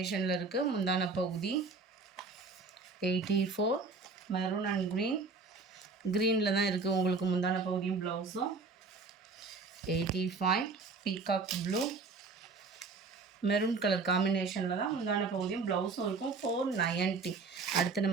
இருக்குது முந்தான பகுதி. 84. மெரூன் அண்ட் க்ரீனில் தான் இருக்குது உங்களுக்கு முந்தான பகுதியும் ப்ளவுஸும். 85. பீகாக் ப்ளூ மெரூன் கலர் காம்பினேஷனில் தான் முந்தான பகுதியும் ப்ளவுஸும் இருக்கும். 490. அடுத்து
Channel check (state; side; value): quieter; left; 4.3 dB